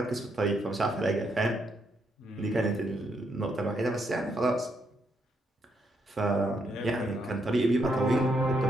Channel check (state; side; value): normal; both; correlation 0.77